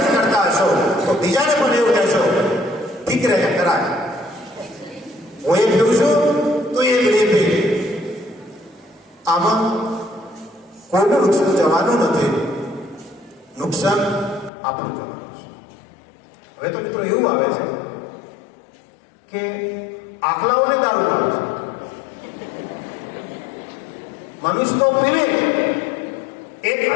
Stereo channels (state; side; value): drops out; right; at 14.5 s